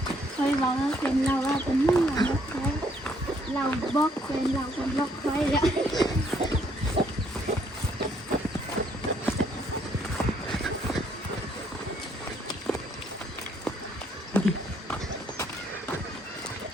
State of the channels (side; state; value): both; normal; correlation 0.68